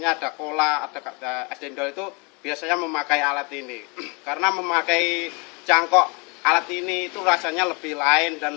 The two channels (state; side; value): quieter; right; 31.0 dB